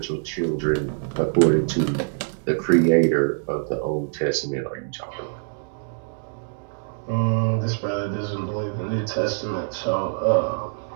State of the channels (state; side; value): silent; left; digital silence